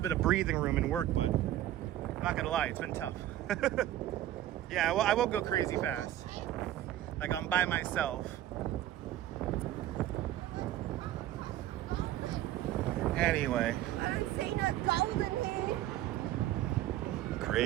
bit of breathing room in work, but I'm not gonna lie, it's been tough. Yeah, well, I won't go crazy fast. Like I'm by myself. Anyway. I'm seeing a golden here.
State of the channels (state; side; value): quieter; left; 13.2 dB